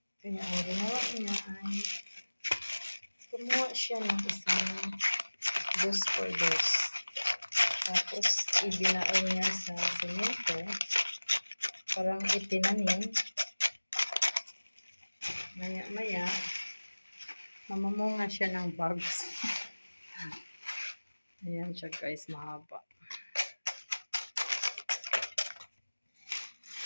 Kaya ang ginawa niya ay kumuha siya ng isang dos por dos. Tapos ibinaon niya sa semento. Parang itinanim. Maya-maya, mamamunga siya ng bags. Ayan siya guys, mahaba.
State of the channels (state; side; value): inverted; both; correlation -1.00